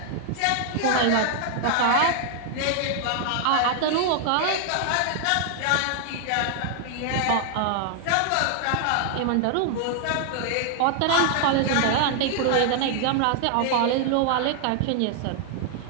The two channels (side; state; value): both; different; correlation 0.00